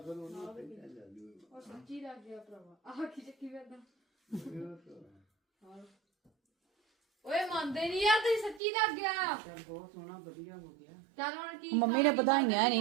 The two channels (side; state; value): left; drops out; at 8.6 s